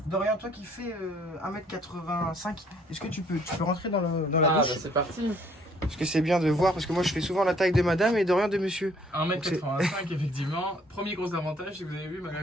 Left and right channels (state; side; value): normal; both; correlation 0.62